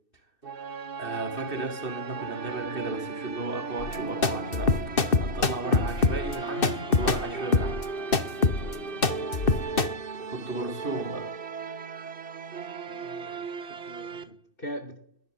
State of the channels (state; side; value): late; right; 2.6 ms